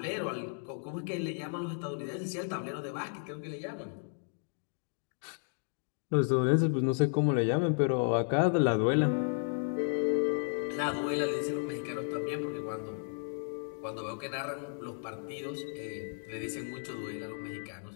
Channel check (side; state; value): right; silent; 55 dB below the other